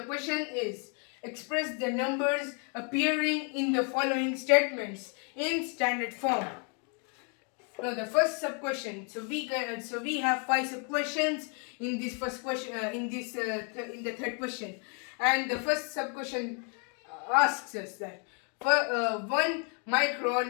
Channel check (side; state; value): right; quieter; 38.4 dB